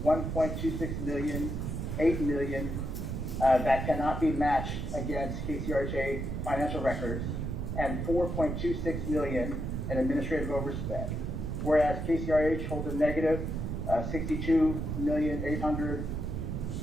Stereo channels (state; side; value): noise; right; rumble, 3 dB below the sound